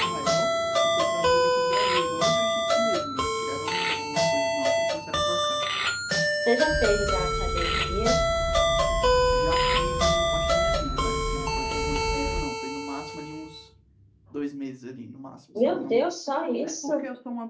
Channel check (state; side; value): identical; both; correlation 1.00